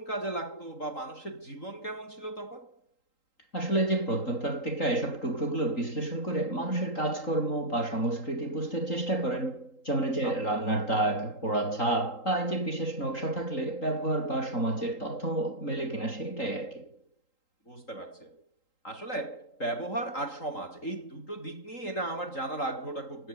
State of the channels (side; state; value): right; late; 3.8 ms